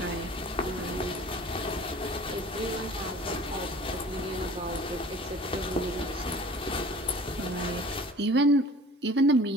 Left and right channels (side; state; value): both; normal; correlation 0.45